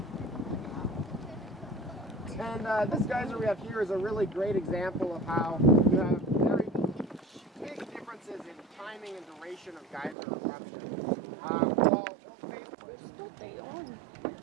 And this geyser we have here is a really great example of how you have very big differences in timing and duration of geyser eruptions.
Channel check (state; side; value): drops out; left; at 10.2 s